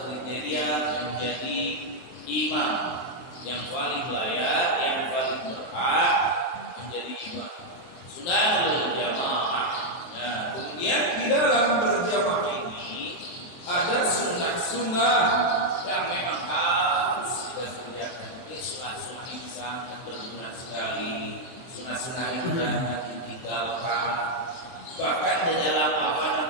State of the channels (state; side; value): late; right; 23 ms